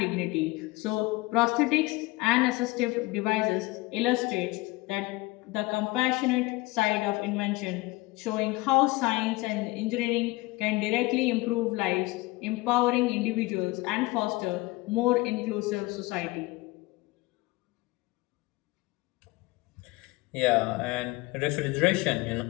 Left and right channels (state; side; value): quieter; right; 21.6 dB